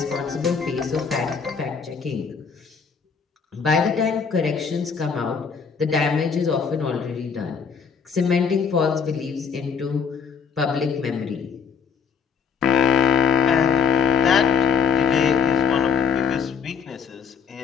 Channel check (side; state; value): right; quieter; 6.3 dB